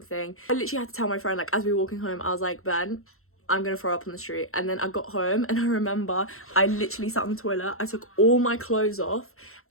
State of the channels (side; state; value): right; late; 0.62 ms